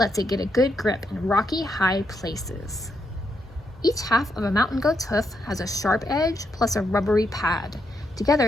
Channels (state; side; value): normal; both; correlation 0.80